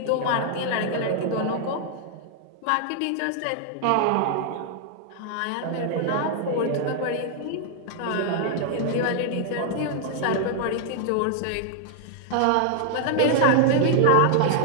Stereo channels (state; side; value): different; both; correlation 0.00